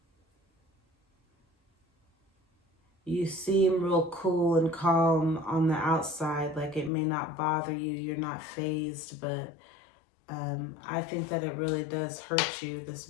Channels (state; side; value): drops out; right; at 6.9 s